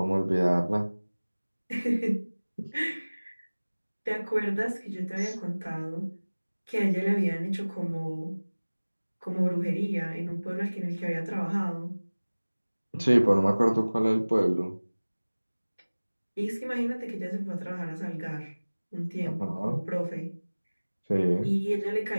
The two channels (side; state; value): both; inverted; correlation -1.00